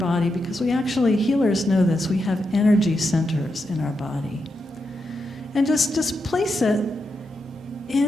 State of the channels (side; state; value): both; normal; correlation 0.85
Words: because we actually, healers know this, we have energy centers in our body. And just place it